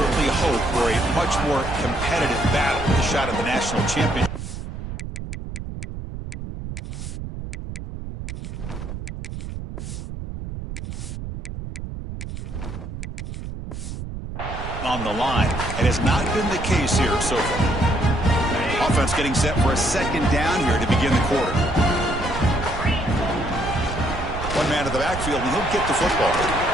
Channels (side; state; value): right; noise; rumble, 8 dB below the sound